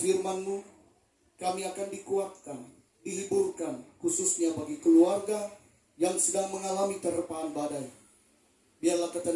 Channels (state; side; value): identical; both; correlation 1.00